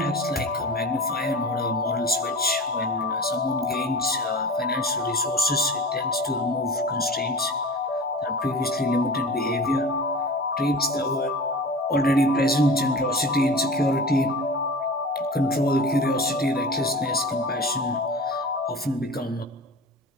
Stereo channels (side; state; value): both; normal; correlation 0.35